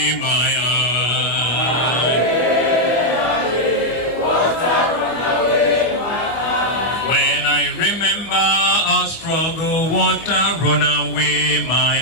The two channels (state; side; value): late; right; 25 ms